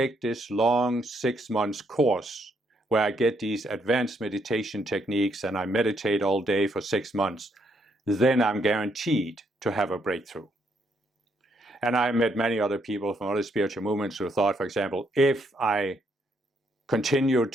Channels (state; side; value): normal; both; correlation 0.74